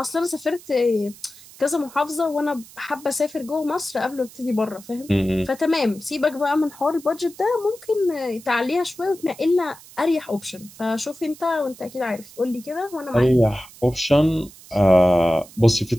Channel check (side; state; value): right; noise; hiss, 21 dB below the sound